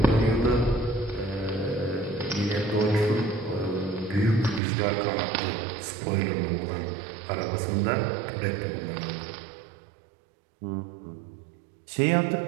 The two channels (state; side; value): drops out; left; at 4.6 s